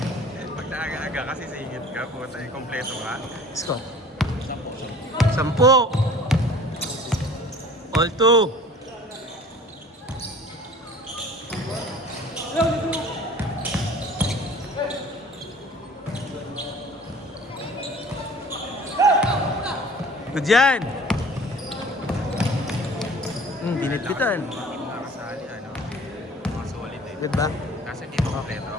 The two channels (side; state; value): both; normal; correlation 0.48